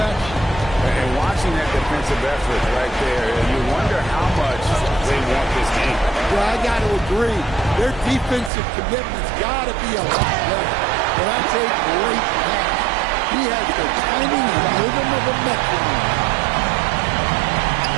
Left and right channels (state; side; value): drops out; left; at 8.5 s